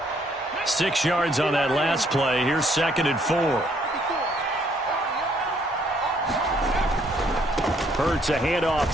Six yards on that last play. Here's 2nd and 4. Hurts a handoff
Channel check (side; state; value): both; normal; correlation 0.67